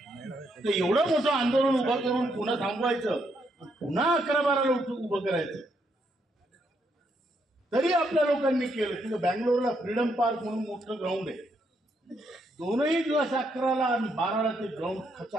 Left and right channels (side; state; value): both; normal; correlation 0.76